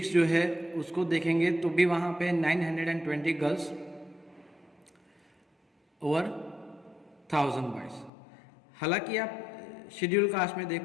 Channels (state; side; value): drops out; right; at 8.1 s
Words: जो है उसको देखेंगे तो भी वहाँ पे 920 गर्ल्स और 1000 बॉयज़। हालांकि आप शेड्यूल कास्ट में